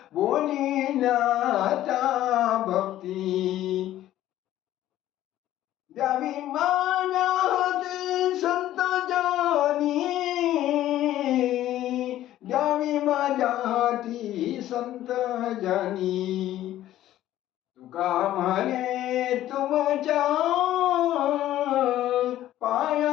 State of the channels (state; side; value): quieter; right; 13.4 dB